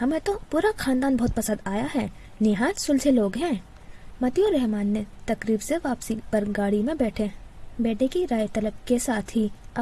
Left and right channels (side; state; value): both; identical; correlation 1.00